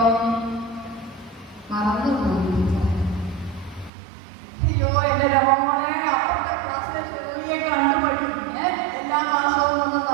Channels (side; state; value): left; drops out; at 3.9 s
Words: മറന്നുപോയി. അയ്യോ, എന്റെ രമോളെ, അപ്പുറത്തെ ക്ലാസ്സിലെ ചെറിയ കണ്ടുപഠിക്കും. എല്ലാ മാസവും ഒന്നും